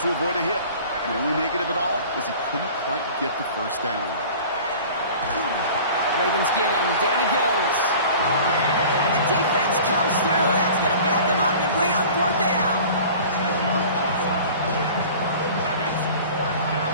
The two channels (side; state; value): both; inverted; correlation -0.43